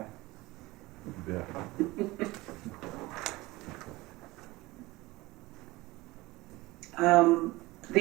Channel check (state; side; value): quieter; left; 20.6 dB